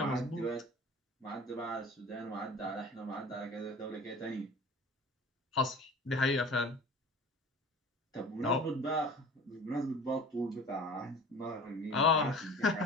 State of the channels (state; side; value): normal; both; correlation 0.41